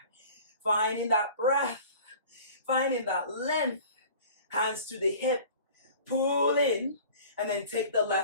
Finding that breath, finding that length. Hands to the hip. Pull in, and then take the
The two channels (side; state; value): both; inverted; correlation -0.44